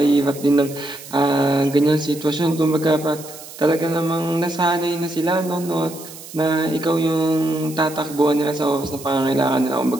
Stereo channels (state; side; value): noise; right; hiss, 15 dB below the sound